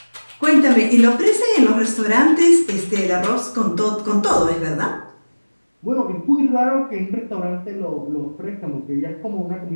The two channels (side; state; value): both; inverted; correlation -1.00